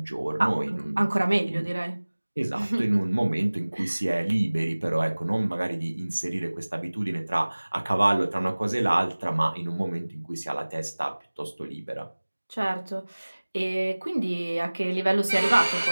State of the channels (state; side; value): inverted; both; correlation -1.00